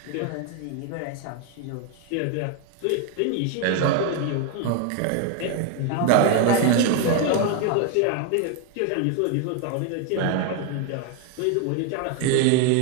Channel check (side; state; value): both; different; correlation 0.01